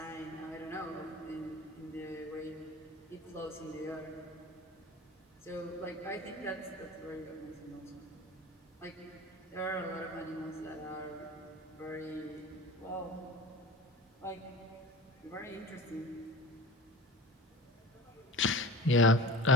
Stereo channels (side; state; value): both; normal; correlation 0.37